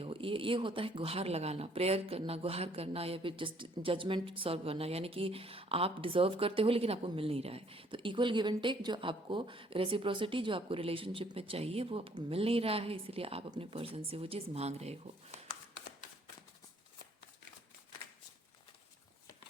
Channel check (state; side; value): normal; both; correlation 0.63